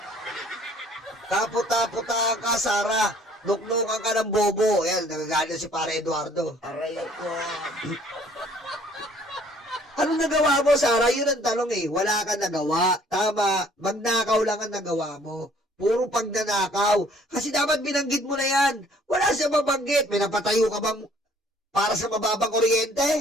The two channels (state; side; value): normal; both; correlation 0.58